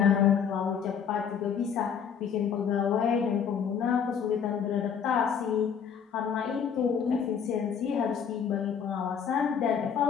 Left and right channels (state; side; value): quieter; right; 7.4 dB